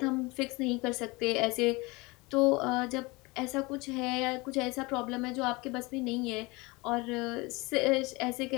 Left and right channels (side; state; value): right; quieter; 24.6 dB